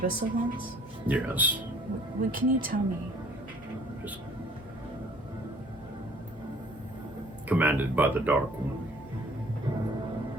ones? Yes. What can you tell me? Commanded by the Dark One.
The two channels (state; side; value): normal; both; correlation 0.54